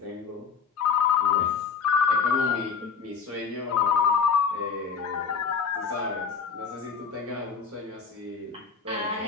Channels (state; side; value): quieter; right; 6.1 dB